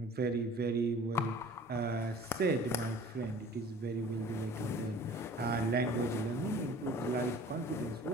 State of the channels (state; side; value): normal; both; correlation 0.46